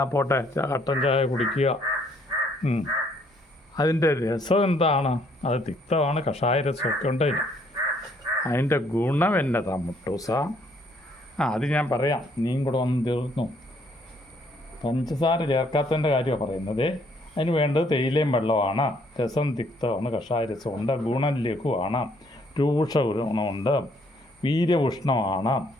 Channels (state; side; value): normal; both; correlation 0.66